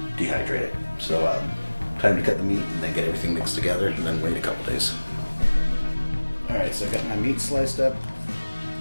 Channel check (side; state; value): both; inverted; correlation -1.00